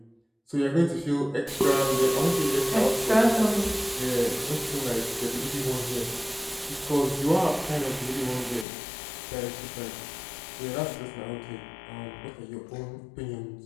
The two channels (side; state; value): right; drops out; at 8.7 s